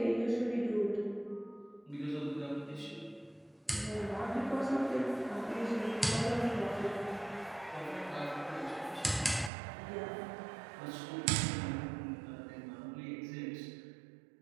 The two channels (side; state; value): left; drops out; at 9.5 s